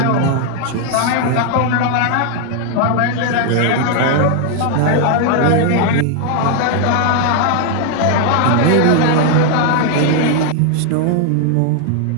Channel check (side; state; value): both; different; correlation 0.00